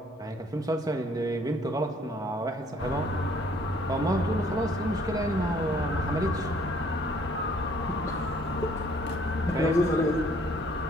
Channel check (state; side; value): normal; both; correlation 0.61